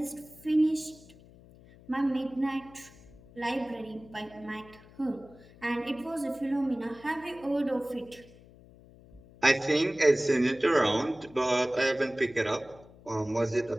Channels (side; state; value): left; noise; hum, 23 dB below the sound